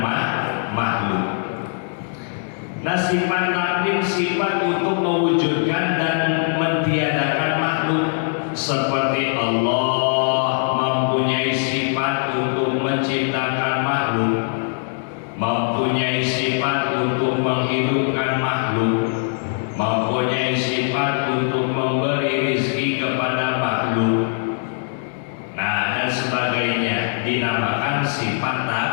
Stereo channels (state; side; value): silent; right; 62 dB below the other